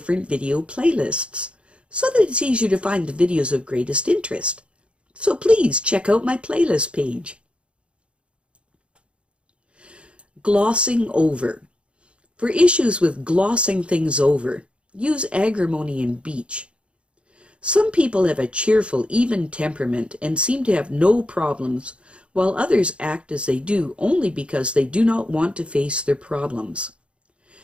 video playlists, so that it's easier to find the videos of greatest interest. So please check out my playlist page. Glossing over. For issues with glossing things over, use agrimony and beech. Some people have a cheerful, even temperament and seem to have no problems, while others act as they do only because they do not want to face their problems.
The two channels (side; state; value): left; late; 0.058 ms